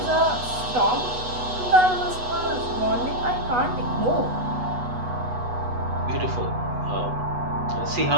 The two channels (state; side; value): late; left; 8.1 ms